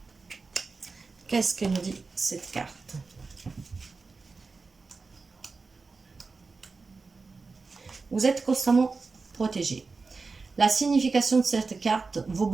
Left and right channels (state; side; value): quieter; left; 4.2 dB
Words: Qu'est-ce que nous dit cette carte? Vous êtes constamment protégés. La signification de cette carte, vos